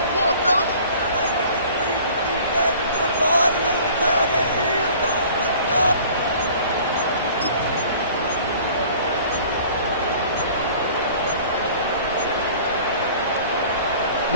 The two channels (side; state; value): both; inverted; correlation -0.48